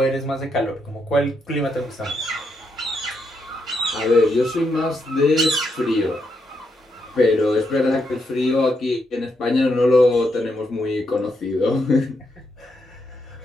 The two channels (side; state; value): both; normal; correlation 0.80